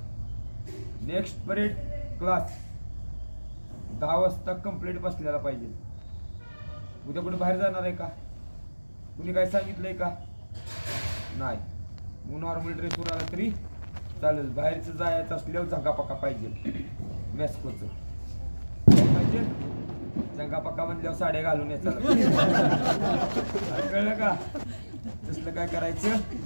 Next parade class 10 वाजता कंप्लीट बसलेला पाहिजे. उद्या कुठे बाहेर जाणार आहे का? कुणी काय सांगितलंय का? नाही. मग नॉर्मल ड्रेसवर आला तरी चालेल. बाहेरचं जायचं असल्यावर झंगापक्का पाहिजे. मॅस्कोचं पाहिजे. झंगापक्का म्हणल्यावर साड्या घालून यायचं. कळलं का? तसलं काय करायचं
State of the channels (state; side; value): inverted; both; correlation -1.00